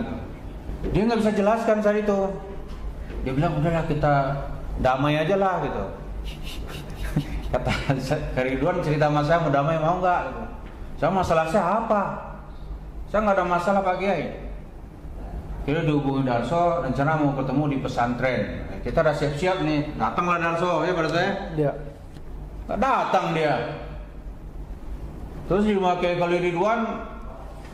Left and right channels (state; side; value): identical; both; correlation 1.00